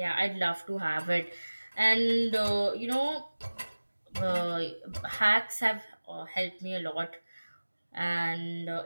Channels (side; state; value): both; inverted; correlation -1.00